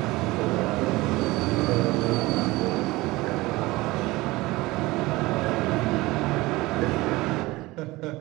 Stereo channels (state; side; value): quieter; left; 20.5 dB